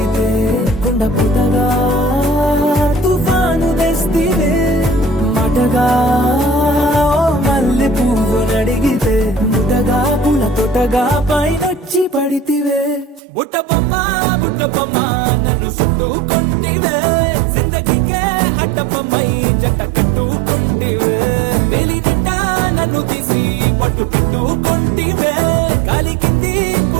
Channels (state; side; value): drops out; left; at 13.2 s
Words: కొండ పుటగా తుఫాను తెస్తివే. మాటగా మల్లె పువ్వు నడిగితే ముటగా పుల తొటగా పైనొచ్చి పడితివే. బుట్ట బొమ్మ నన్ను చుట్టుకుంటివే, జిందగీకే అడ్డబొమ్మై జంట కట్టుకుంటివే. వేలి నిండా నన్ను తీసి పట్టు పెట్టుకుంటివే, కాలి కింది